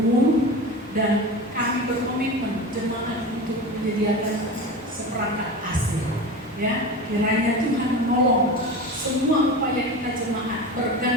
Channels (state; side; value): normal; both; correlation 0.29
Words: dan kami berkomitmen jemaat untuk menyediakan seperangkat AC. Ya, kiranya Tuhan menolong semua upaya kita jemaat